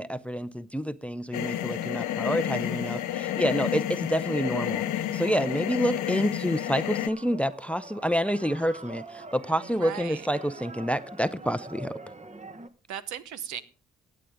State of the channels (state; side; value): normal; both; correlation 0.73